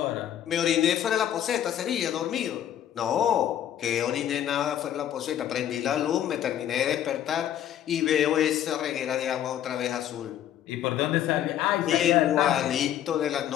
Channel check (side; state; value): right; quieter; 10.9 dB